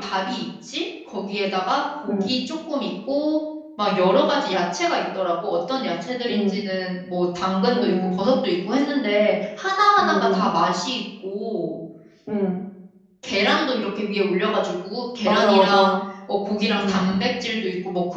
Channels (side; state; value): both; identical; correlation 1.00